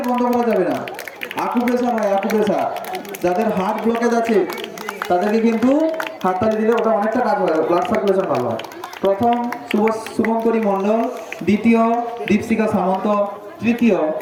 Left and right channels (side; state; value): both; identical; correlation 1.00